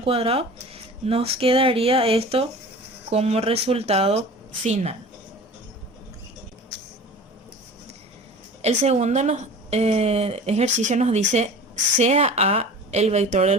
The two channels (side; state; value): both; normal; correlation 0.39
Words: cuadrado, nos quedaría esto como resultado final. El segundo ejercicio nos dice sea A el vector del